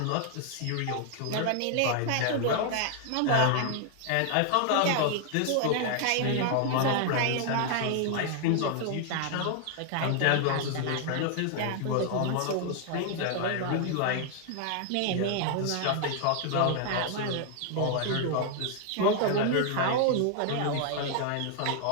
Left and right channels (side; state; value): both; different; correlation 0.00